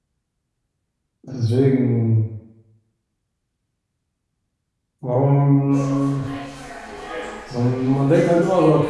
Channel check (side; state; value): both; identical; correlation 1.00